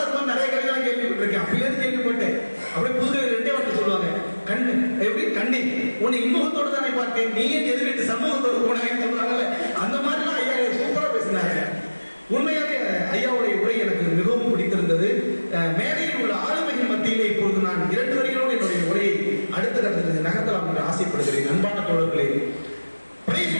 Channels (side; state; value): both; inverted; correlation -1.00